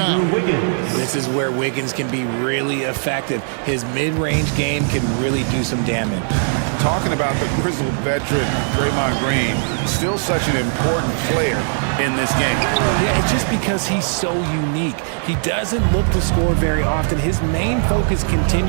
This is where Wiggins can be really effective. His mid-range game can really do some damage. talking about the grizzled veteran, Draymond Green, still such an important player in this game. Yeah, it's just because he's so unique. He doesn't look to score very often. His main focus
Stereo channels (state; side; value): silent; left; digital silence